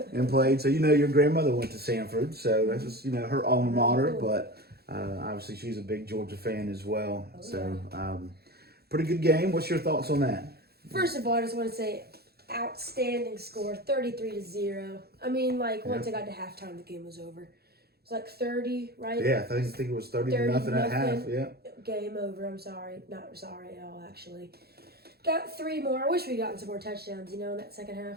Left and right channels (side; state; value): left; late; 0.46 ms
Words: and played. So, your grandmother went to Sanford. So, that's just, her alma mater. But obviously, she's a big Georgia fan as well. Pretty good game. What's your thoughts on that? First of all, I just want to say outstanding score, 33-0. I mean, once it got to halftime, the game was over. It was 30, right? Yeah, I think it was 30 to nothing at half. Yeah. Game over. I'm sorry. Not sorry at all, actually. Got 3 more. I wish we'd gotten some more touchdowns, in that second